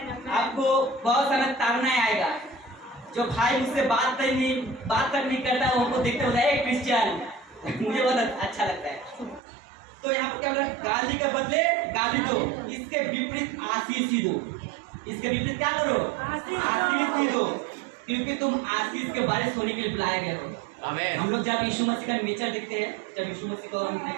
आपको बहुत सारा ताड़ना आएगा, जो भाई मुझसे बात तक नहीं करता वो हमको देखते होता है क्रिश्चियन, मुझे बहुत अच्छा लगता है। तो यहाँ पर क्या बोला, गाली के बदले गाली दो, इसके विपरीत आशीष ही दो। इसके विपरीत क्या करो, आशीष ही दो, क्योंकि तुम आशीष के बारिश होने के लिए बुलाए गए हो। आमीन। हम लोग जब यीशु मसीह का नेचर देखते हैं, जब यीशु मसीह को हम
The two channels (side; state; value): left; drops out; at 9.4 s